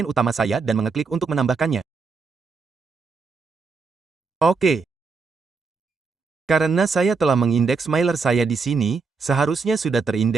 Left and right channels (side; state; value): left; quieter; 4.7 dB